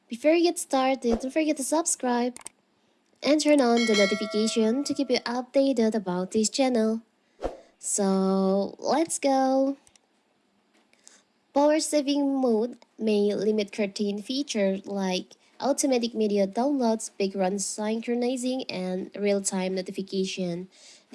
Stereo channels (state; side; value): identical; both; correlation 1.00